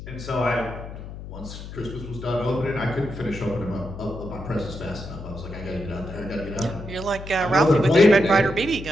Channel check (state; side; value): noise; left; hum, 11 dB below the sound